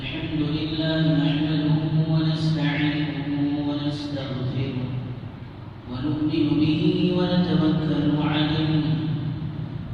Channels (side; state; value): both; identical; correlation 1.00